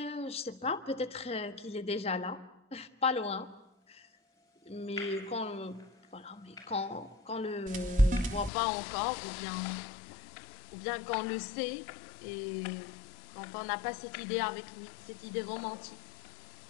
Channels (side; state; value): right; drops out; at 8.5 s